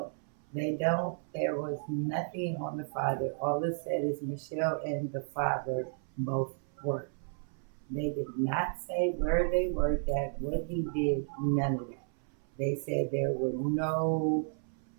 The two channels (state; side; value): silent; left; 56 dB below the other